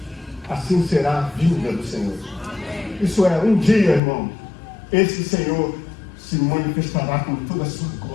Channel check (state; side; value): drops out; right; at 4.0 s